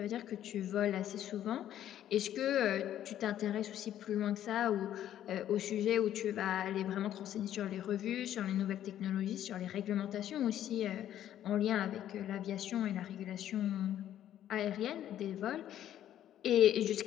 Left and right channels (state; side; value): quieter; right; 11.4 dB